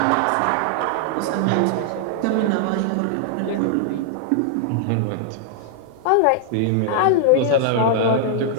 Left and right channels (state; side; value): different; both; correlation -0.01